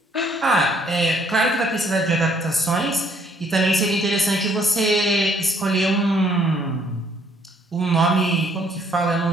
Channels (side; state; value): both; normal; correlation 0.65